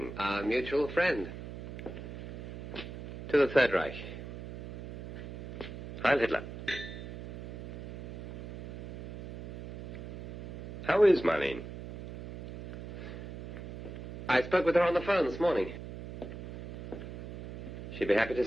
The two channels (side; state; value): right; noise; hum, 9 dB below the sound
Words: Our mutual friend. To the Third Reich. Heil Hitler. How is Marlene? I spoke with her on the phone this morning. She'd be happy to